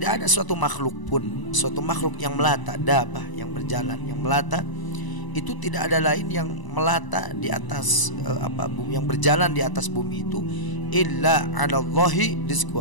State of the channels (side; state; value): right; late; 1.0 ms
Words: ada suatu makhluk pun, suatu makhluk yang melata, dabah yang berjalan, yang melata, itu tidak ada lain yang melata di atas bumi, yang berjalan di atas bumi itu illa 'alallahi